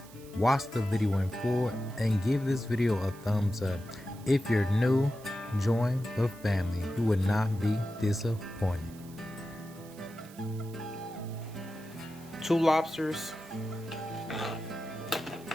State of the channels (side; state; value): right; noise; hiss, 22 dB below the sound